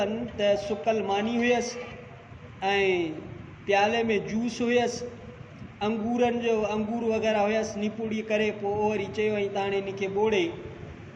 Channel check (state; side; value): identical; both; correlation 1.00